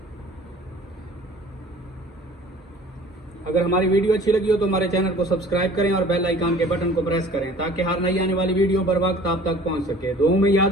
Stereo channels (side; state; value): both; normal; correlation 0.48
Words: अगर हमारी वीडियो अच्छी लगी हो तो हमारे चैनल को सब्सक्राइब करें और बेल आइकन के बटन को प्रेस करें ताकि हर नई आने वाली वीडियो बर वक्त आप तक पहुंच सके। दुआ में